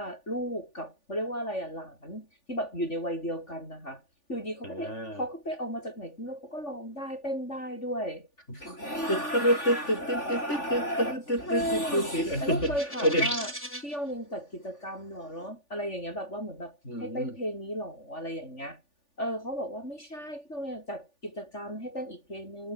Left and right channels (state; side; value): late; right; 3.4 ms